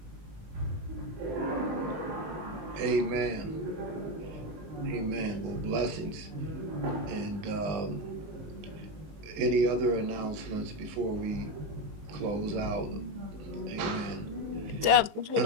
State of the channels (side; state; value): left; late; 19 ms